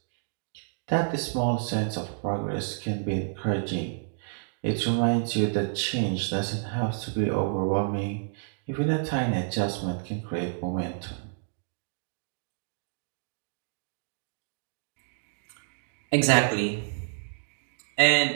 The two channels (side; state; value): left; silent; digital silence